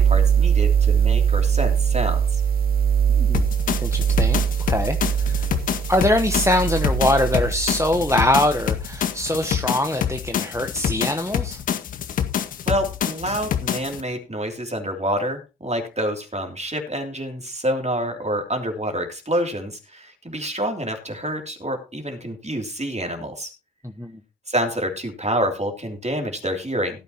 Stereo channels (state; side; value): normal; both; correlation 0.57